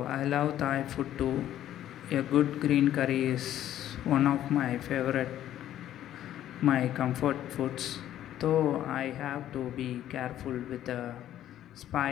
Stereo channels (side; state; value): right; quieter; 12.0 dB